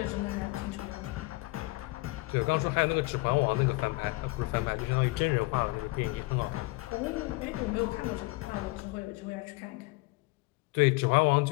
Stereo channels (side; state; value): right; quieter; 23.5 dB